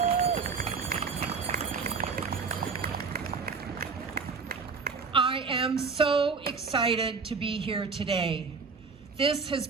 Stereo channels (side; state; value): left; quieter; 5.0 dB